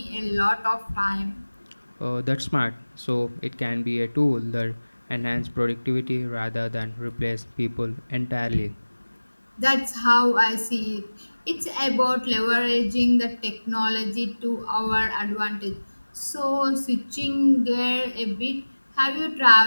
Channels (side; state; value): both; inverted; correlation -1.00